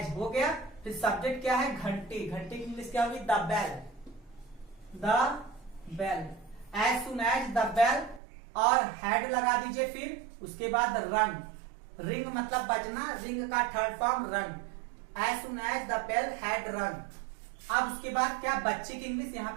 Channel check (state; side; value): drops out; left; at 8.2 s